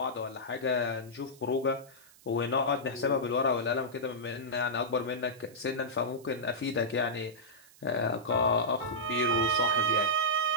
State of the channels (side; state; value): right; noise; hiss, 25 dB below the sound